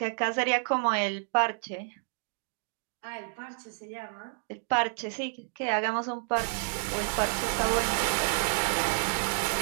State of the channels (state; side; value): silent; left; 58 dB below the other